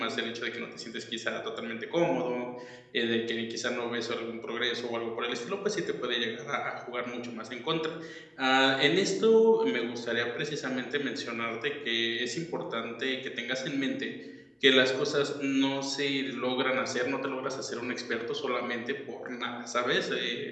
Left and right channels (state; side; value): identical; both; correlation 1.00